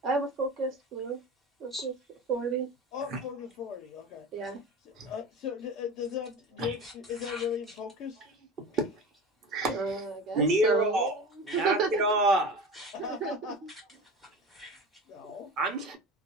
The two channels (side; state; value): both; normal; correlation 0.32